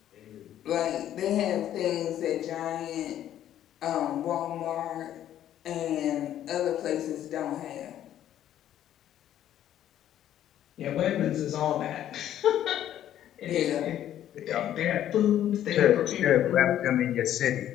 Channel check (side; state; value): right; quieter; 11.5 dB